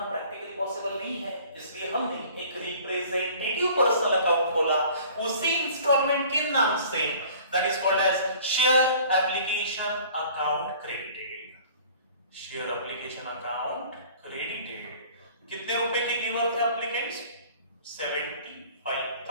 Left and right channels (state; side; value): inverted; both; correlation -0.49